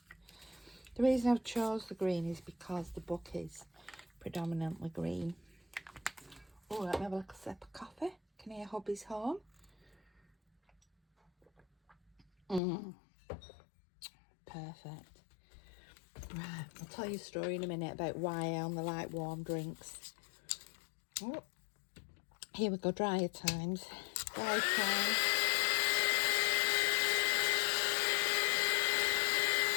The reason I've chose the green is because the book is predominantly green. Oh, let me have a little sip of coffee. Can you hear hubby's home? Perfect. Right, I'll tell you a story in a minute about why I only like warm drinks. Oh, here we go, drier times. Dry times.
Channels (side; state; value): right; drops out; at 12.6 s